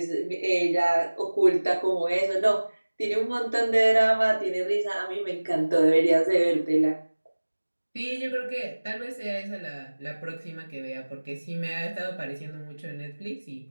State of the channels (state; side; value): inverted; both; correlation -1.00